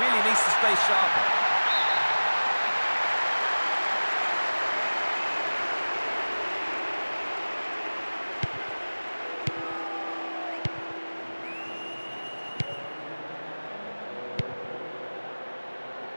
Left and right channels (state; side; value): inverted; both; correlation -1.00